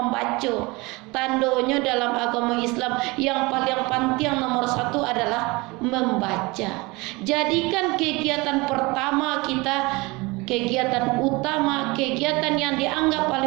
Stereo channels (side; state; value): left; quieter; 24.3 dB